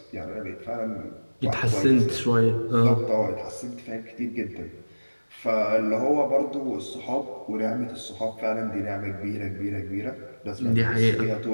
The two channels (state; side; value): inverted; both; correlation -1.00